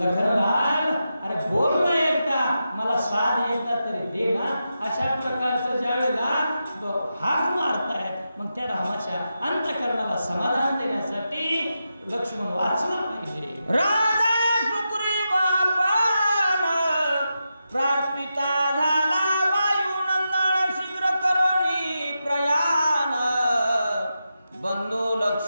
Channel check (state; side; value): inverted; both; correlation -0.88